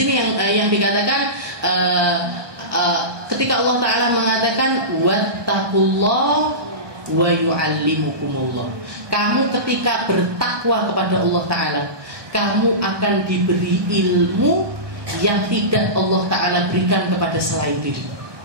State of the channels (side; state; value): left; late; 1.2 ms